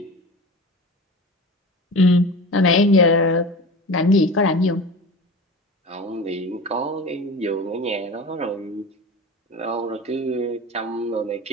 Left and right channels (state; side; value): normal; both; correlation 0.32